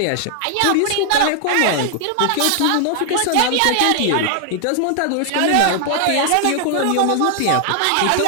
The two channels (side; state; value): both; different; correlation 0.00